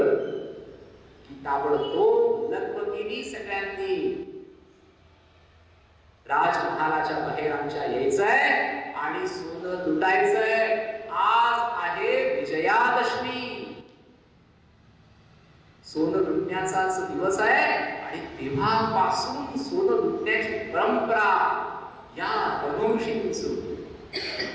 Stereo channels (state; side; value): identical; both; correlation 1.00